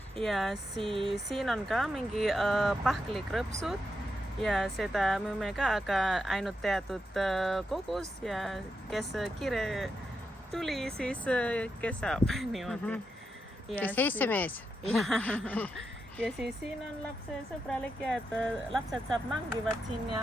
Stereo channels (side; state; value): both; normal; correlation 0.86